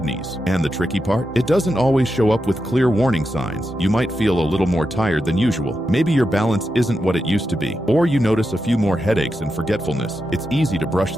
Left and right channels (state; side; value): normal; both; correlation 0.88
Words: And the tricky part? It doesn't always show up with clear warning signs. You might feel a little more tired than usual. Maybe your balance isn't what it used to be. Or you notice a few more headaches and forgetfulness. It's easy to brush